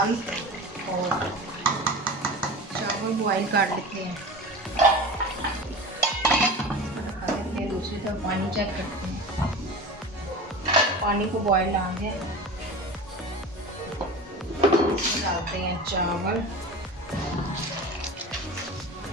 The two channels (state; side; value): normal; both; correlation 0.32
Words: और चावल बॉयल कर लेते हैं। दूसरी तरफ पानी चेक करते हैं। पानी को बॉयल आ गया, इसमें डालते हैं चावल।